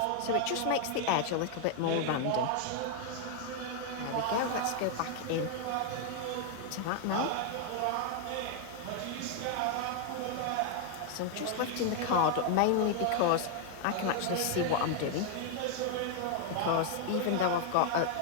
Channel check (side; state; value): both; different; correlation 0.00